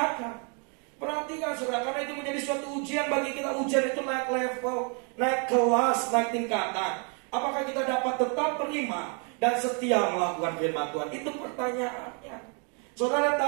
Perhatikan, saudara, karena itu menjadi suatu ujian bagi kita. Ujian itu naik level, naik kelas, naik tingkatan. Apakah kita dapat tetap beriman dan setia melakukan firman Tuhan? Itu pertanyaannya. Saudara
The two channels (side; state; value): left; quieter; 37.9 dB